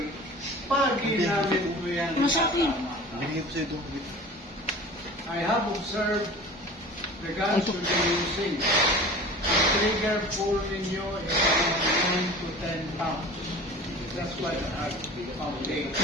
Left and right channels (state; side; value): normal; both; correlation 0.39